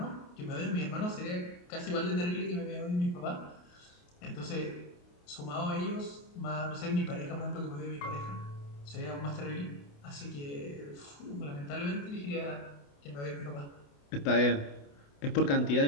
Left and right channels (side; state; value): right; late; 28 ms